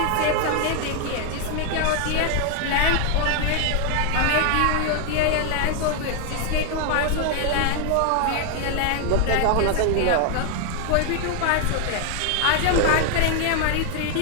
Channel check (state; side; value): different; both; correlation 0.00